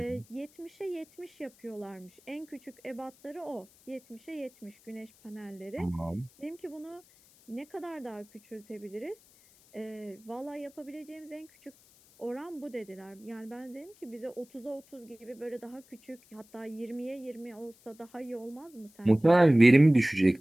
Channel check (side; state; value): left; noise; hiss, 27 dB below the sound